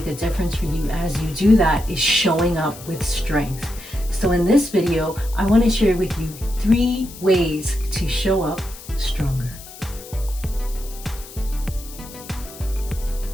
a difference for you as you do that is showing up with strength. So in this video, I want to share with you 3 ways to show up stronger.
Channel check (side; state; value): left; noise; hiss, 16 dB below the sound